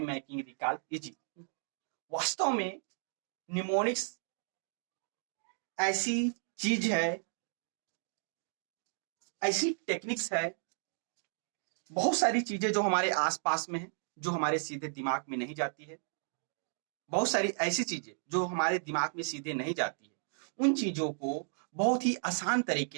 making recall easy. वास्तव में mnemonics ऐसी चीज है, ऐसी techniques है, बहुत सारी चीजें जो हमारे आसपास में है, जो हमारे सीधे दिमाग में नहीं जाती है, बहुत सारी ऐसी चीजें जो हमारे दिमाग में सीधे नहीं जाती है, उन चीजों को बहुत ही आसान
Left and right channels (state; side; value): silent; left; digital silence